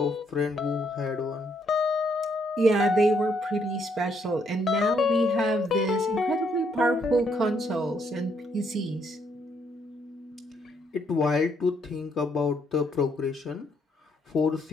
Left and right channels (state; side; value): normal; both; correlation 0.72